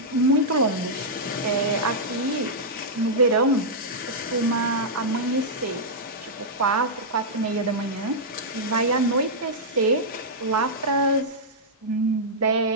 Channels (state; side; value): normal; both; correlation -0.09